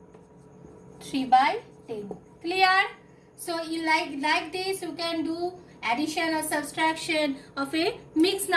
3 by 10. Clear? So you like this, you can do addition or subtraction of a mixed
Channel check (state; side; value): identical; both; correlation 1.00